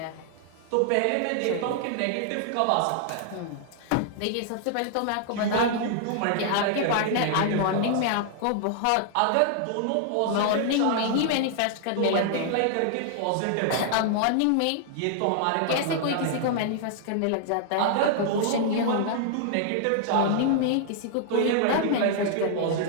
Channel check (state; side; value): different; both; correlation -0.01